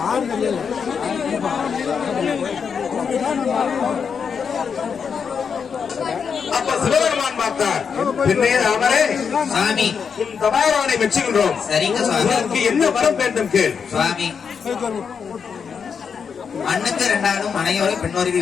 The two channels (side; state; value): right; quieter; 6.4 dB